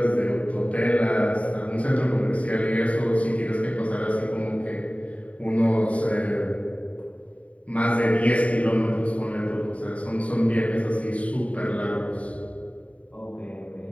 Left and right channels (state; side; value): late; right; 0.066 ms